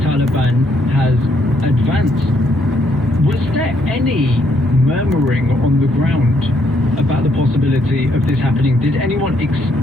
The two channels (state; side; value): normal; both; correlation 0.72